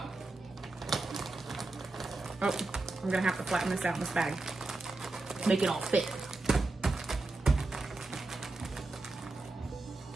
Oh, I'm gonna have to flatten this out in this bag. Make it all fit.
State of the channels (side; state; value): left; quieter; 3.2 dB